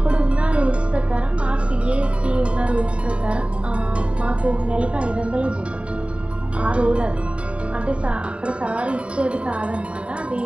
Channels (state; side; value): late; left; 0.060 ms